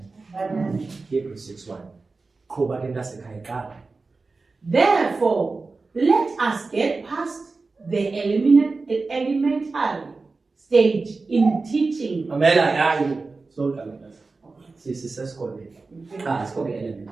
Hebrews 6:1. Therefore, let us get past the elementary stage in teaching.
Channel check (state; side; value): quieter; left; 3.9 dB